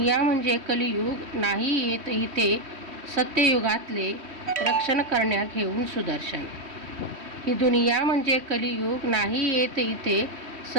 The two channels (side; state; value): left; late; 3.1 ms